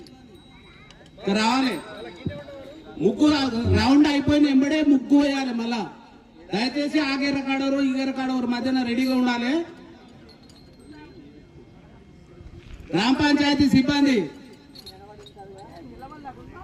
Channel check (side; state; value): both; identical; correlation 1.00